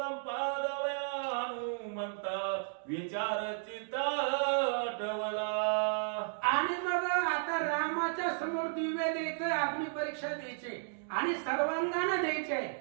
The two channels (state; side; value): silent; left; digital silence